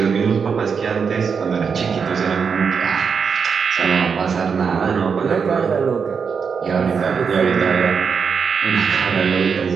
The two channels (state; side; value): quieter; left; 6.1 dB